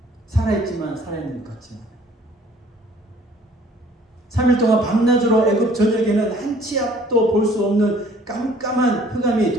살아있지만 살아있는 것 같지 않아요. 3일 동안 밤낮으로 애굽 전역에는 한치 앞도 볼 수 없는 깜깜한 흑암이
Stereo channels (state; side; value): normal; both; correlation 0.56